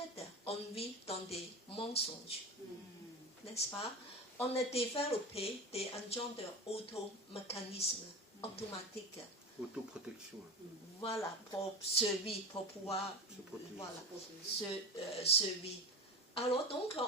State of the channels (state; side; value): normal; both; correlation 0.26